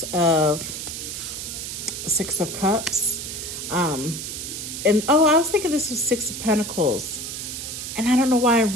of Cups, And oh, I was thinking this was Six of Pentacles. And I don't know why I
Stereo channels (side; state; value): right; noise; hiss, 7 dB below the sound